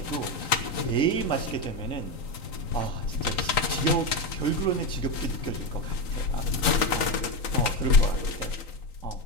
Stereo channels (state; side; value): late; right; 3.9 ms